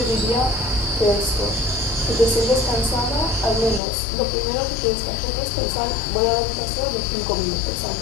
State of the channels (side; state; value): right; drops out; at 3.8 s